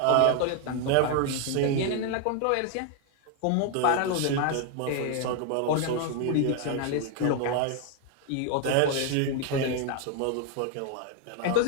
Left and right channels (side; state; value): both; different; correlation 0.00